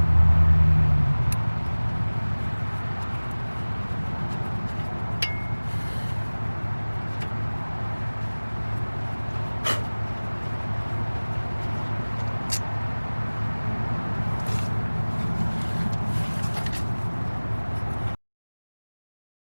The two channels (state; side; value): inverted; both; correlation -1.00